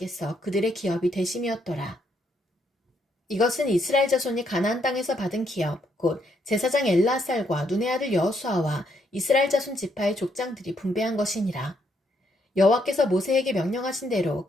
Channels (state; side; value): normal; both; correlation 0.74